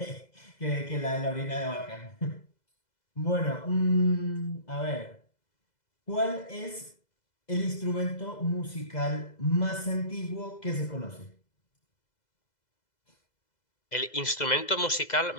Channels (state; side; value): late; right; 2.0 ms